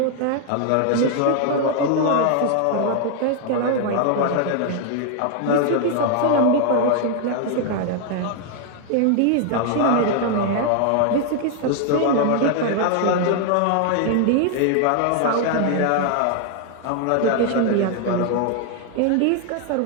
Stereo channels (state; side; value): different; both; correlation 0.00